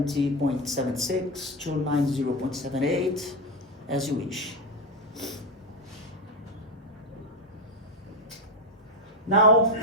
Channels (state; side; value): normal; both; correlation 0.11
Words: 290.78, as you wish. Now,